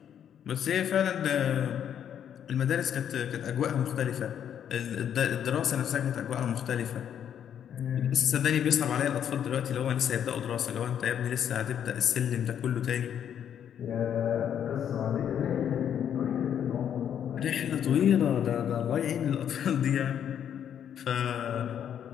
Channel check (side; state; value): right; quieter; 9.2 dB